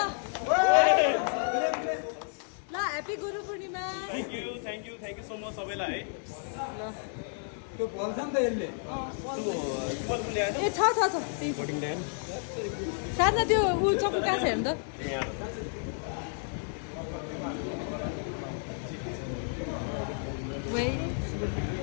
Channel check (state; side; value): silent; right; 57 dB below the other